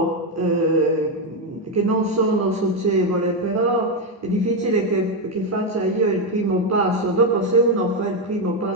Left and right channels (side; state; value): both; normal; correlation 0.06